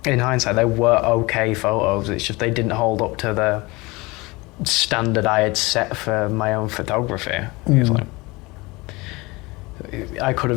in hindsight, they were okay photos. It's just they didn't hold up to the standard I had set for my own photography. It's like, I could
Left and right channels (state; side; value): quieter; right; 23.7 dB